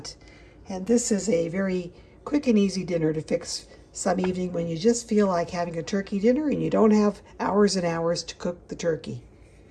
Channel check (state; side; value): identical; both; correlation 1.00